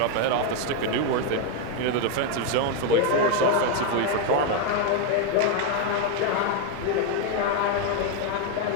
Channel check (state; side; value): different; both; correlation 0.01